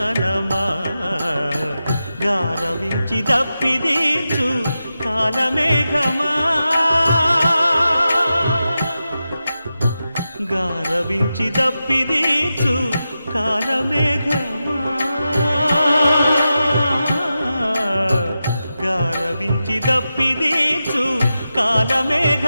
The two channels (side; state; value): both; inverted; correlation -0.91